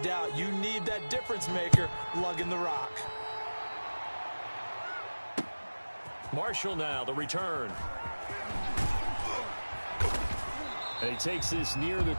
You need that difference maker lugging the rock. Marshall now, the return. And he takes this near the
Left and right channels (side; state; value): both; inverted; correlation -1.00